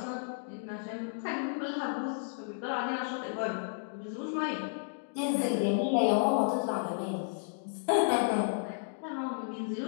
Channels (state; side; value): silent; right; digital silence